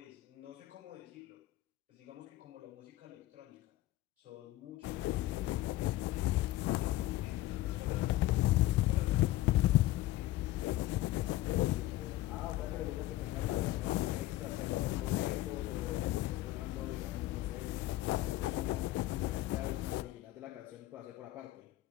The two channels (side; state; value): right; quieter; 16.2 dB